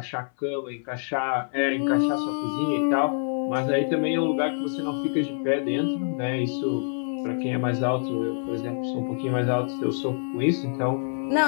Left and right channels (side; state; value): right; silent; 59 dB below the other